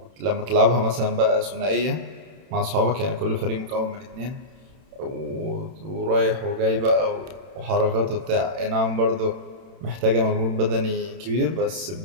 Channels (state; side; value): late; left; 31 ms